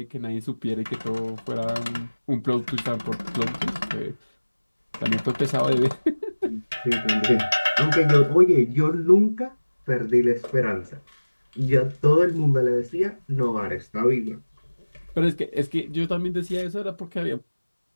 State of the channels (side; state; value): both; inverted; correlation -1.00